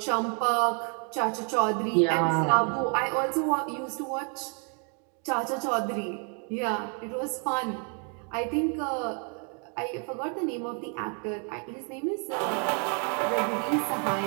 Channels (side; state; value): left; quieter; 39.3 dB